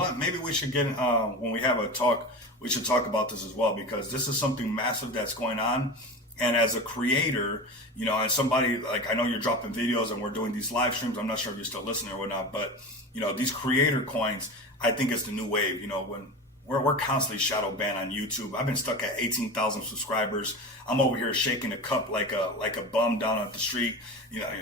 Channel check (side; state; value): both; normal; correlation 0.29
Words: maybe we should get when we have a talk, we should talk about this as well, because this is something massive that's going on. And as a creator, you know, and somebody like, I know you're dropping videos and we're doing these live streams. I'm not sure if you're still listening or whatnot, but you know, these creator coins, I think it's the new wave. You know, when we're constantly shadow banned on YouTube. I've been stuck at 18,000 subscribers. I'm over here shaking a cup like a bum down at the street, you know,